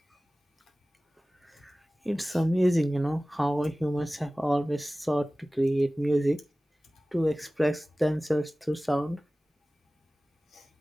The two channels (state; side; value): normal; both; correlation 0.97